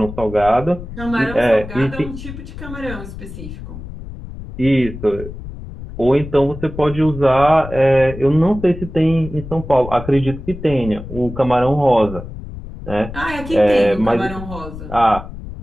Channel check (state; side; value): noise; left; rumble, 11 dB below the sound